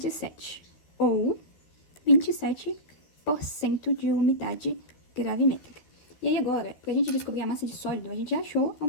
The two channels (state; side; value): late; right; 12 ms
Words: ou 27% de umidade gravimétrica. E aí agora, para a gente descobrir a massa de sólido, a gente já achou a